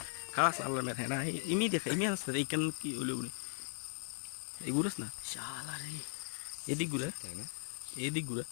খালাস আল্লাহ মেরে না imi দেখা imi আসছে ইকান কি হলো বলে এই গুরস না শালা রে এদিক গুরা তাই না এদিক গুরা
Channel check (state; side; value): silent; right; 52 dB below the other